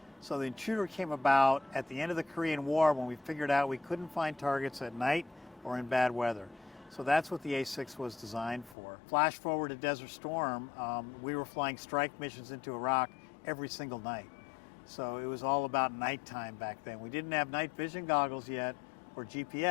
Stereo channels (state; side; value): drops out; right; at 8.8 s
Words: So the Intruder came about at the end of the Korean War when we figured out we couldn't find targets at night or in bad weather. So that's what the A-6 was designed for. Flash forward to Desert Storm, we were flying strike missions into Iraq every single night. So it was all about nighttime back then. We didn't have night vision goggles yet or